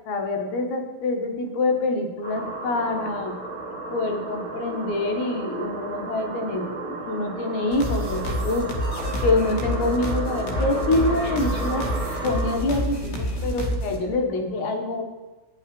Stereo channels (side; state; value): right; late; 16 ms